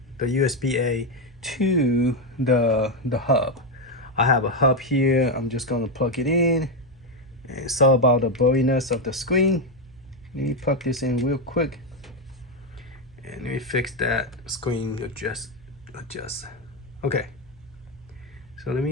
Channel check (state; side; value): noise; right; hum, 25 dB below the sound